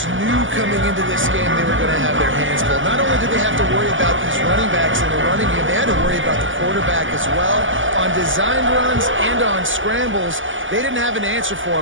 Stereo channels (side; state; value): left; late; 0.57 ms